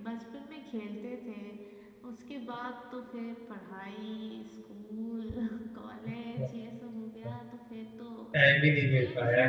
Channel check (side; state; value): both; identical; correlation 1.00